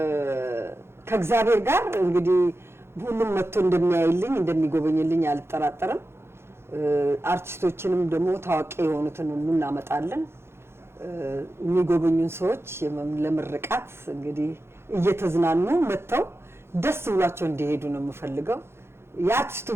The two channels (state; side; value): late; left; 0.12 ms